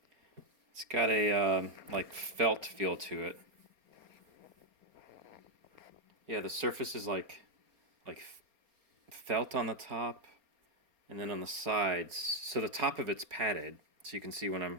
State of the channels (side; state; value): left; late; 4.3 ms